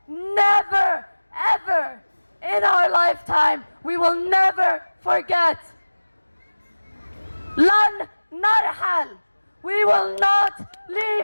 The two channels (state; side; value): inverted; both; correlation -1.00